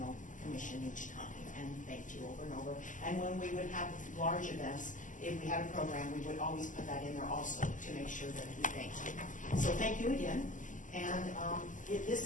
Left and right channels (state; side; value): late; right; 0.37 ms